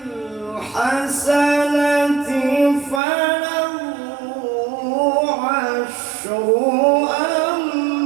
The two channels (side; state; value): left; drops out; at 3.0 s